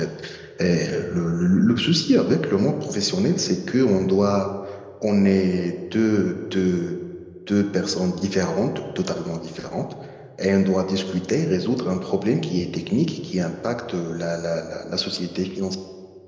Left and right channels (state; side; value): identical; both; correlation 1.00